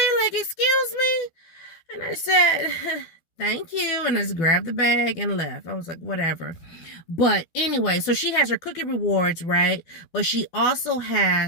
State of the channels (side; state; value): right; late; 12 ms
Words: like, excuse me? And I said, thank you. And I just grabbed the bag and left. I was like, whatever. But anyway, so she has her cookie rewards, right? But she also